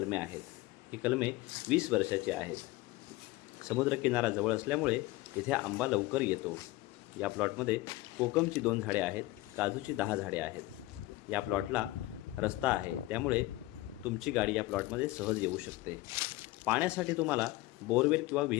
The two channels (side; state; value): right; quieter; 18.9 dB